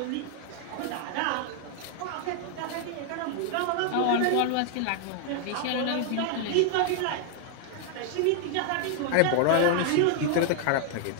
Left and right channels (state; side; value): different; both; correlation 0.00